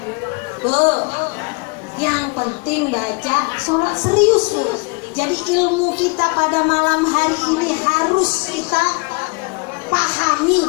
Bu, yang penting baca sholat serius Bu. Jadi ilmu kita pada malam hari ini harus kita pahami,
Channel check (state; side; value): quieter; right; 30.6 dB